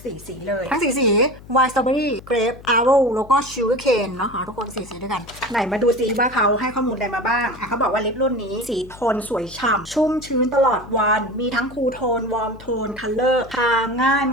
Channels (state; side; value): noise; left; hum, 19 dB below the sound